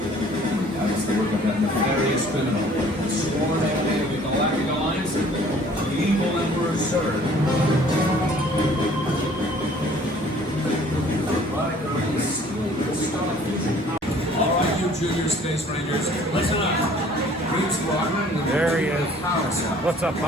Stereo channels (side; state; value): both; normal; correlation 0.54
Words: That is the work of that nefarious criminal, the sworn enemy of the Galactic Alliance, the evil Emperor Zurg. Alright, you junior space rangers, listen up. Green Squadron, there he is. What's up,